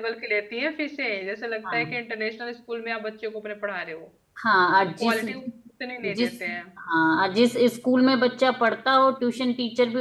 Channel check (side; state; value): both; identical; correlation 1.00